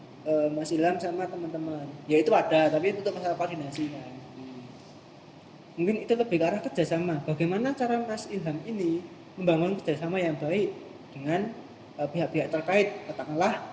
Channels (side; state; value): both; identical; correlation 1.00